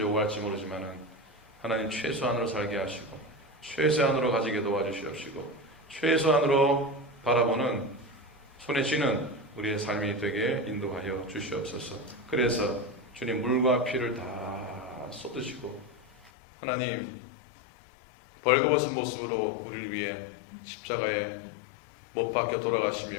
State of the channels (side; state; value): right; drops out; at 16.3 s